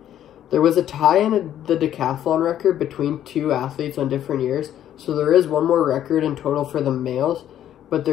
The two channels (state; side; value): quieter; right; 11.1 dB